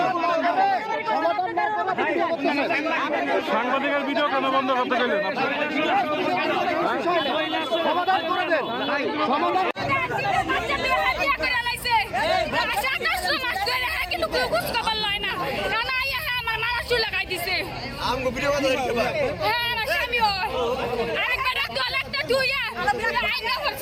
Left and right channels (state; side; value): identical; both; correlation 1.00